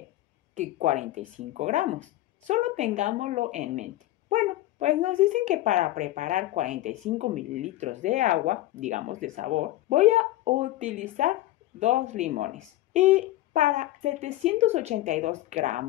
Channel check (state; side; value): quieter; right; 16.1 dB